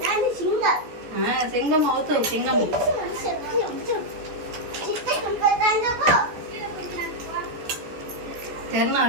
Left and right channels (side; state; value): left; late; 14 ms